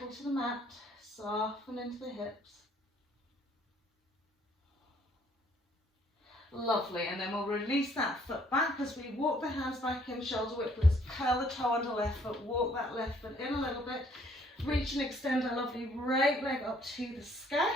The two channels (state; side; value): normal; both; correlation 0.63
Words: to the mat, soften into the hips. Lovely, and then we'll release that foot back as we walk the hands back in, shoulder width. Let's curl the toe under left foot, walk that left foot in a little bit, reach and extend our lovely right leg up to the sky.